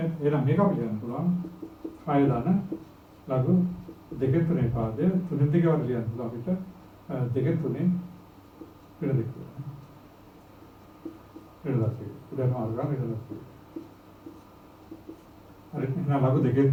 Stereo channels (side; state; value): both; identical; correlation 1.00